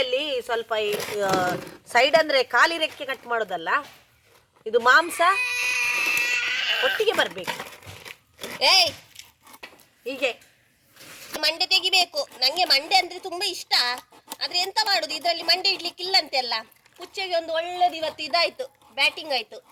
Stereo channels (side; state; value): both; identical; correlation 1.00